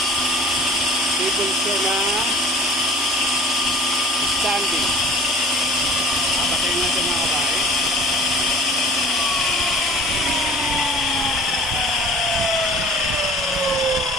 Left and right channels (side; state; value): both; normal; correlation 0.46